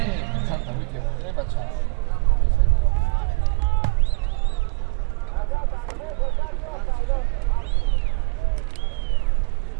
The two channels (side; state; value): left; quieter; 31.5 dB